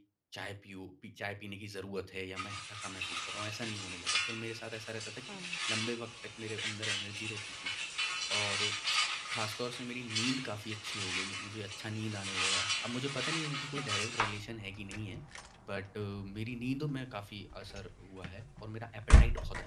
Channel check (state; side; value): identical; both; correlation 1.00